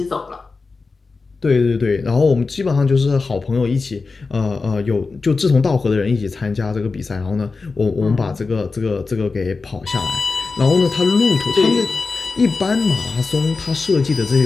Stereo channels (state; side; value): quieter; right; 4.2 dB